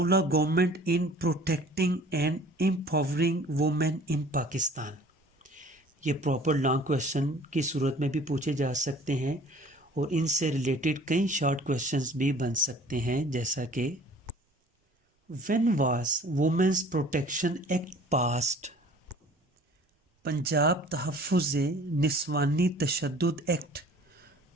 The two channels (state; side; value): normal; both; correlation 0.49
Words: of government in protecting and empowering women in Pakistan। ये proper long question की सूरत में भी पूछे जा सकते हैं और इनसे रिलेटेड कई शॉर्ट क्वेश्चंस भी बन सकते हैं, जैसा कि when was women's protection act passed. Punjab तहफ़्फ़ुज़ निस्वानी तशद्दुद एक्ट